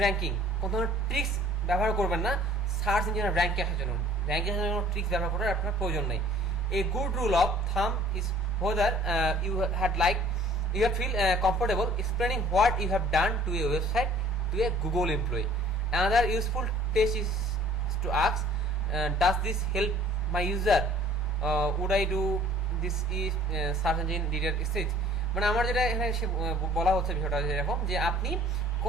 ranking. কোনো ধরনের ট্রিক্স ব্যবহার করবেন না সার্চ ইঞ্জিনের র্যাঙ্কে আসার জন্য। র্যাঙ্কে আসার জন্য ট্রিক্স ব্যবহার করার আপনার প্রয়োজন নেই। A good rule of thumb is whether you feel comfortable explaining what you have done to a website to a Google employee. Another useful test is to ask, does this help my user? Would I do this if search engine didn't exist? মানে আমার যেটা এখানে বলা হচ্ছে বিষয়টা এরকম যে আপনি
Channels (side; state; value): both; normal; correlation 0.52